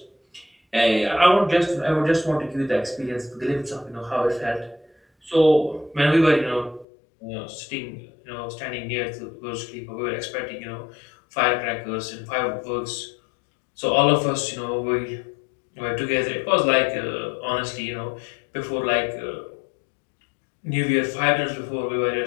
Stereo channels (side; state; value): right; drops out; at 6.9 s